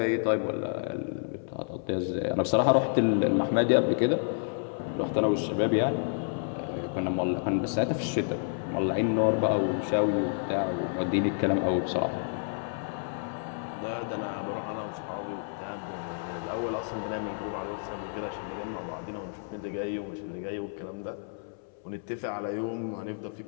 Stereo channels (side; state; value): right; silent; 58 dB below the other